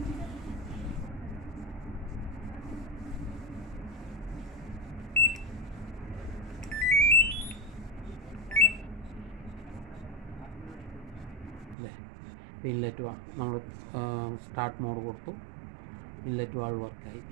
ഇൻലെറ്റ് നമ്മൾ സ്റ്റാർട്ട് മോഡ് കൊടുത്തു, ഇൻലെറ്റ് വാൾവ് വർക്കായി.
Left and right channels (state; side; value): drops out; left; at 11.8 s